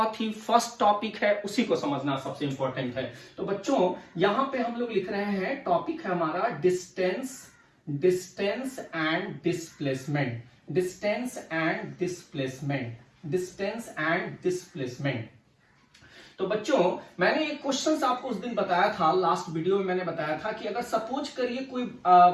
ही फर्स्ट टॉपिक है, उसी को समझना सबसे इंपॉर्टेंट है। तो बच्चों यहां पे हम लोग लिख रहे हैं, टॉपिक है हमारा डिस्टेंस एंड डिस्प्लेसमेंट। तो बच्चों मैंने एक क्वेश्चन आपको उस दिन बताया था, लास्ट वीडियो में मैंने बताया था कि अगर सपोज करिए कोई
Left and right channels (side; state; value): both; identical; correlation 1.00